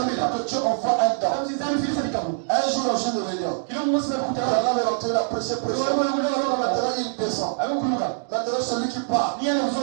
Dieu envoie un don. Un jour, dans une réunion, il a rentré la prêché. Maintenant, il descend. Maintenant, celui qui part,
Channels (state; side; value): silent; left; digital silence